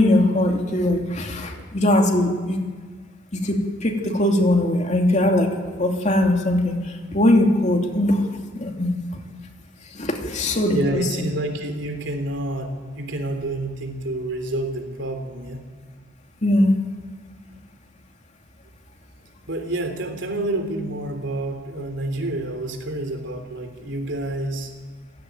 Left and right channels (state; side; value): normal; both; correlation 0.65